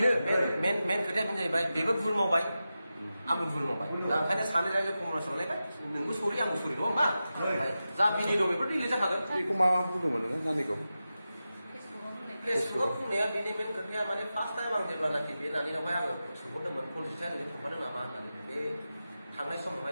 मेन खोथाया बेनो जाहैबाय बेबो भुल मावबाय आंबो भुल मावबाय दा ओंखायनो सानै रायजो कमर्सआवलायबाय नोंबो सरि आंबो सरि नङा होमबा जा बिनि दं बेफोर डिलिट जाखागोन बेखौ मा बुंदोंमोन नोङो नानिखौ फेसबुकआव बुंनाया बेनि मेन खोथाया माने फार्स्ट टाइम आं जेब्लानाखि बे नानिनावहाय आङो सोंहरदोंमोन कनजिथिया नोङो थांफादों नामा होननानै बे थांनाय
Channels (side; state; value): both; inverted; correlation -0.93